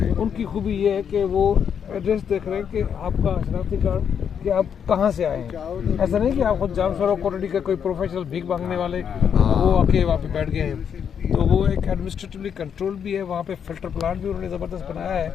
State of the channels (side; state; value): right; quieter; 7.8 dB